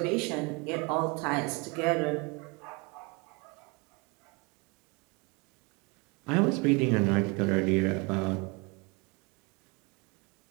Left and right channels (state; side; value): quieter; left; 29.3 dB